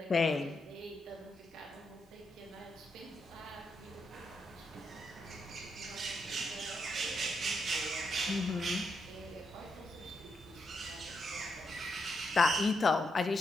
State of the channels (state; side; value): normal; both; correlation 0.82